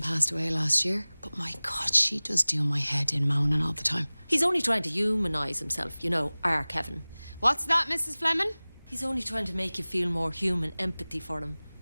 passed away last year, but my God, she does do my head in moaning all the time. He's only trying to humanise himself, our Kevin. What's that, Mrs. Fleming? He's only trying to make you feel more human empathy for him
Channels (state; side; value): inverted; both; correlation -1.00